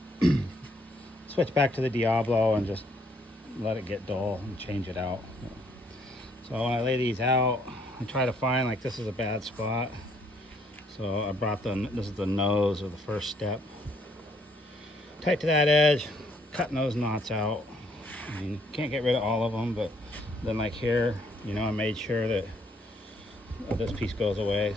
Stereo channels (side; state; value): both; normal; correlation 0.67